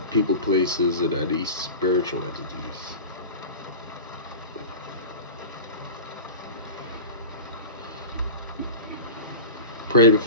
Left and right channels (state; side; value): inverted; both; correlation -0.31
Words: people, places, and any spiritual entities. Pray